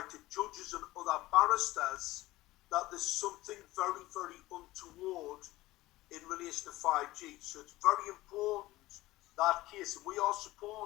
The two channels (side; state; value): right; quieter; 17.9 dB